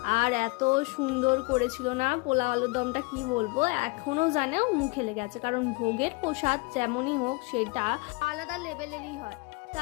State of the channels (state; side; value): quieter; right; 26.8 dB